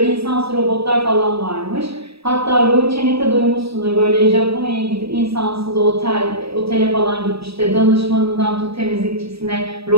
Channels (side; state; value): left; late; 0.77 ms